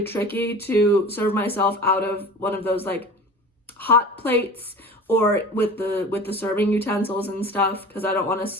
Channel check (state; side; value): normal; both; correlation 0.38